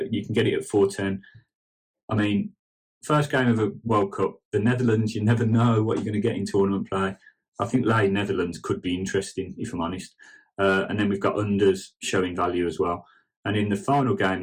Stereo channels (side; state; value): both; identical; correlation 1.00